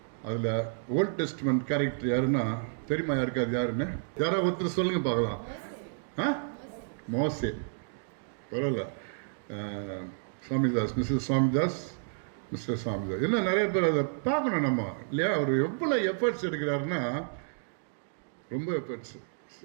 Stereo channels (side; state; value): left; silent; digital silence